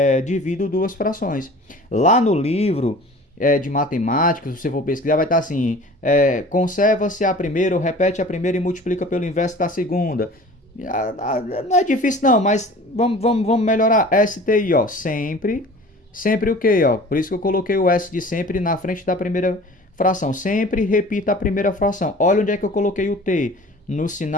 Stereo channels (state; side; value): normal; both; correlation 0.43